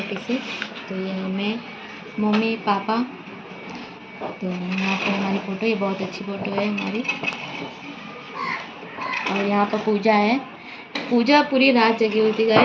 सी। तो यहाँ मैं, मम्मी पापा, तो यहाँ पर हमारी फ़ोटो, ये बहुत अच्छी फ़ोटो है हमारी। और यहाँ पर पूजा है, पूजा पूरी रात जगी हुई थी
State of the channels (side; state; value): both; identical; correlation 1.00